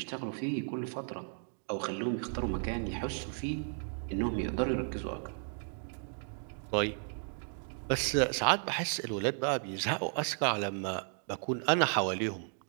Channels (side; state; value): left; silent; digital silence